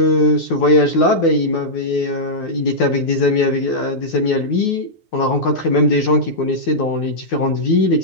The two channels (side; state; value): right; late; 9.4 ms